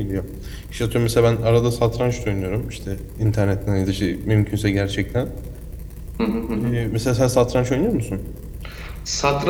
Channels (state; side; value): identical; both; correlation 1.00